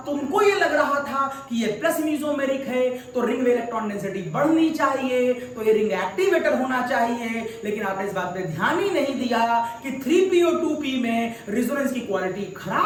तुमको ये लग रहा था कि ये प्लस मीजोमेरिक है तो रिंग में इलेक्ट्रॉन डेंसिटी बढ़नी चाहिए, तो ये रिंग एक्टिवेटर होना चाहिए, लेकिन आपने इस बात पे ध्यान ही नहीं दिया कि 3PO2P में रिजोनेंस की क्वालिटी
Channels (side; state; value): both; identical; correlation 1.00